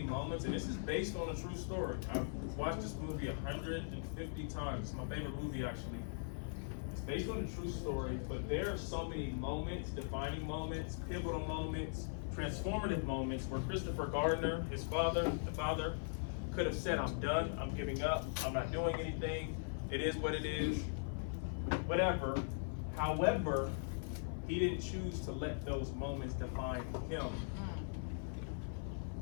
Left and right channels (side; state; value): right; silent; 51 dB below the other